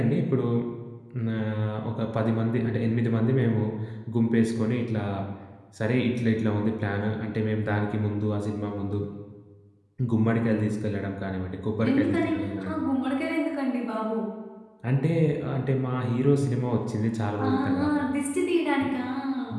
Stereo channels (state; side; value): identical; both; correlation 1.00